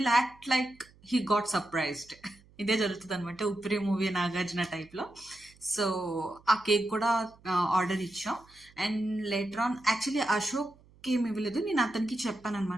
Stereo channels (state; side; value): noise; right; hum, 27 dB below the sound